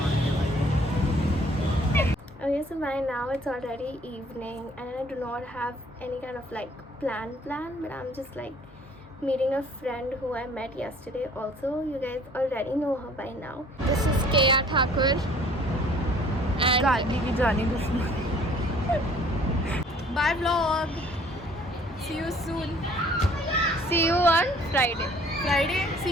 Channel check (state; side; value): normal; both; correlation 0.55